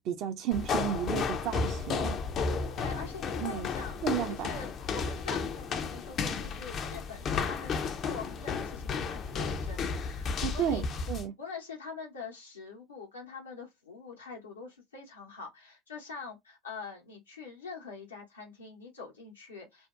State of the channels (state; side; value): normal; both; correlation 0.45